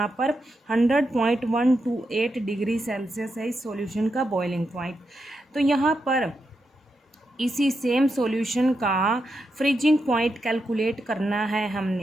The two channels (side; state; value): both; normal; correlation 0.85